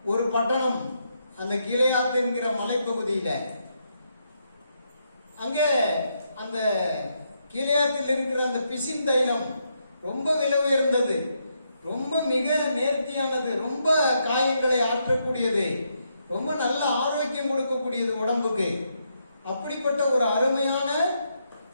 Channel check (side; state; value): both; inverted; correlation -0.79